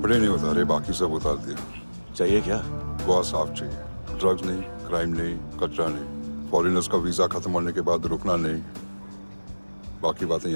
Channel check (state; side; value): inverted; both; correlation -1.00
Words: नहीं उतारे, बाकी सब उतार दिया। चाहिए क्या? बहुत साफ चाहिए। ड्रग्स नहीं, क्राइम नहीं, कचरा नहीं। फॉरेनर्स का वीजा खत्म होने के बाद रुकना नहीं। बाकी बातें